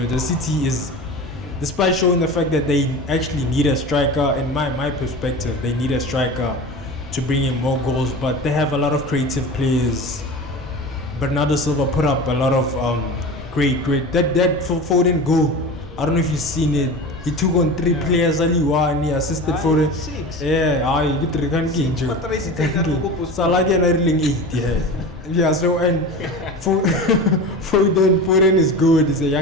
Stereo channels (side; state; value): both; normal; correlation 0.31